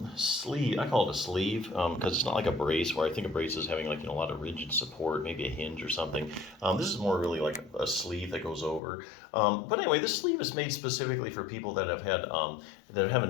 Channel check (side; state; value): right; drops out; at 8.8 s